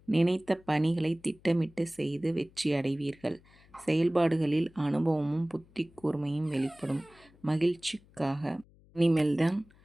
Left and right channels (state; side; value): noise; left; hum, 28 dB below the sound